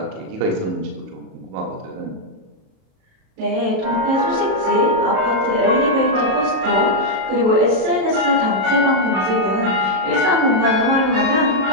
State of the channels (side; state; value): left; late; 37 ms